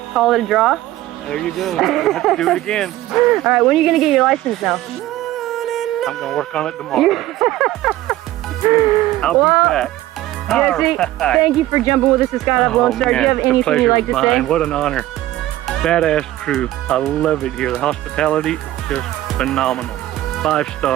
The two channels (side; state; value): left; quieter; 15.4 dB